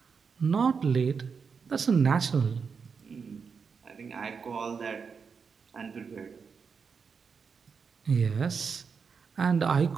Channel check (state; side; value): quieter; left; 5.7 dB